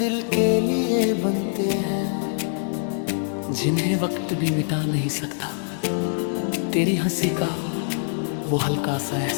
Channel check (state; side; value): silent; right; digital silence